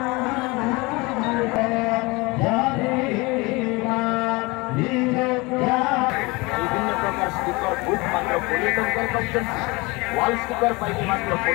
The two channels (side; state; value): right; quieter; 24.9 dB